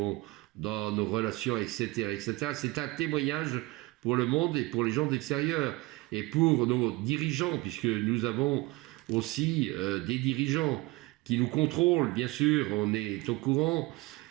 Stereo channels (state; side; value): quieter; left; 21.2 dB